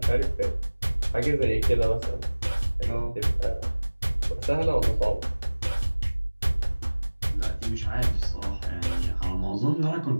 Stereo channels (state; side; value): inverted; both; correlation -1.00